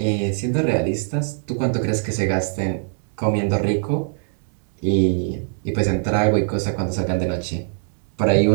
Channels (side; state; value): left; silent; 64 dB below the other